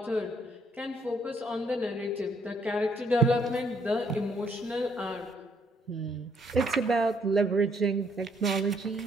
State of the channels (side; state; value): both; normal; correlation 0.69